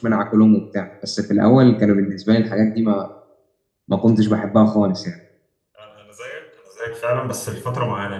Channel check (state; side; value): identical; both; correlation 1.00